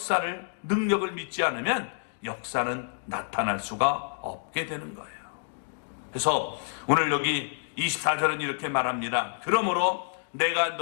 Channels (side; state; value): right; silent; digital silence